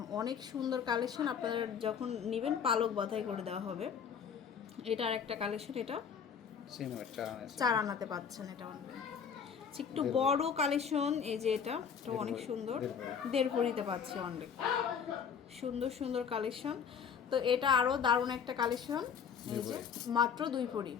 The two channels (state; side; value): quieter; right; 7.1 dB